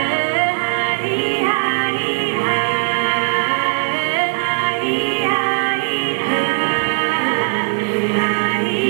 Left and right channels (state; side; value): silent; left; digital silence